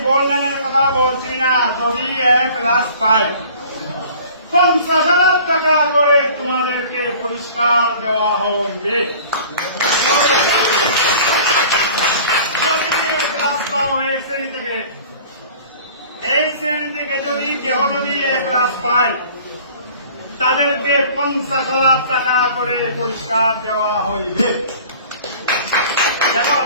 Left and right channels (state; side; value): inverted; both; correlation -0.47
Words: গোল্ডেনের কথা বলছি না, যদি এ প্লাস পাই 50,000 টাকা করে তোমাদেরকে পুরস্কার দেওয়া হবে। এই শ্রেণী থেকে যদি কেহ যদি এ প্লাস পায় তাদেরকে 50,000 টাকা করে পুরস্কার দেওয়া হইবে। দেখো